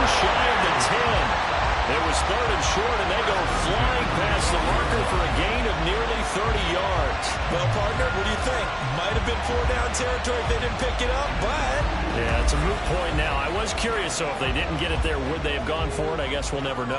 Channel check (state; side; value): identical; both; correlation 1.00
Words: shy of the 10. It was 3rd and short, and they go flying past the marker for a gain of nearly 30 yards. Well, partner, what do you think? Might have been 4-down territory if they didn't pick it up, but... Yeah, it's a moot point now. I was curious, so if they didn't get it there, would they have gone for it? I guess we'll never